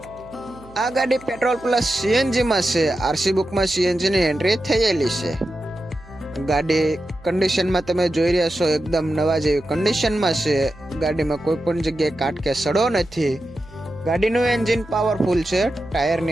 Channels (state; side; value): noise; right; hum, 22 dB below the sound